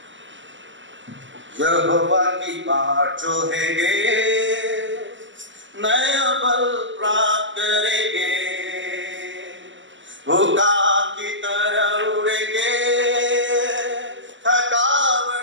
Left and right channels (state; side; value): late; left; 0.54 ms